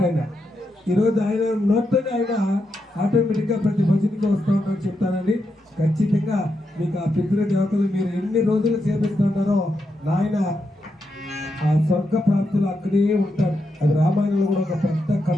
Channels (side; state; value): both; normal; correlation 0.84